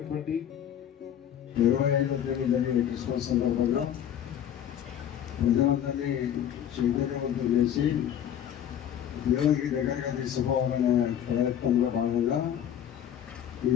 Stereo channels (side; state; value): right; quieter; 9.9 dB